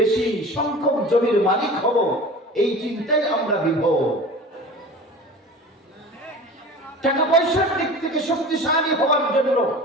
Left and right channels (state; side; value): normal; both; correlation 0.37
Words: সংখ্যক জমির মালিক হব। এই চিন্তায় আমরা বিভোর। টাকা পয়সার দিক থেকে শক্তিশালী হওয়ার জন্য